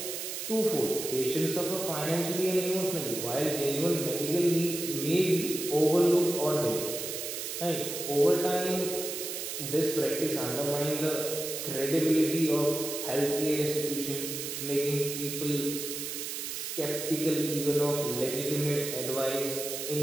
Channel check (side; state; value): right; noise; hiss, 5 dB below the sound